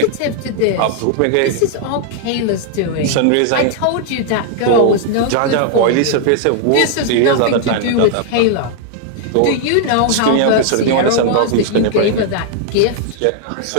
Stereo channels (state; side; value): different; both; correlation 0.00